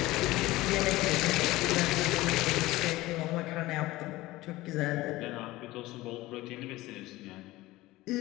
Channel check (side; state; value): right; quieter; 18.4 dB